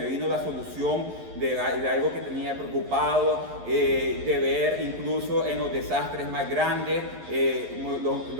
vino la solución de algo que tenía preocupado, de ver incluso en los desastres más grandes,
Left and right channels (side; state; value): left; late; 11 ms